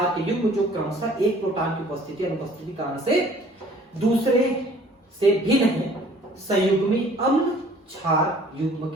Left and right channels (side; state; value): both; normal; correlation 0.54